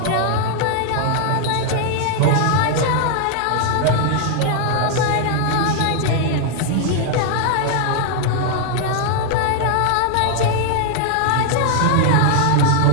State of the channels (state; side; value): different; both; correlation 0.00